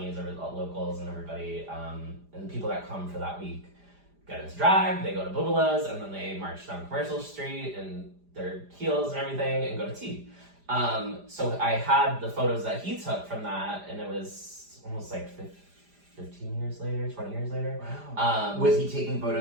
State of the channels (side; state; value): left; late; 5.0 ms